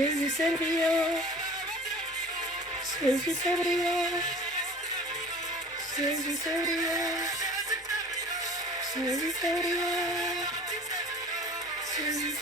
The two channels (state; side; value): normal; both; correlation 0.43